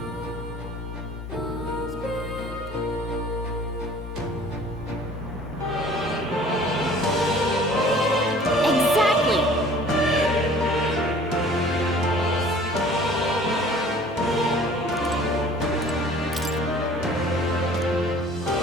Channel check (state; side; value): normal; both; correlation 0.50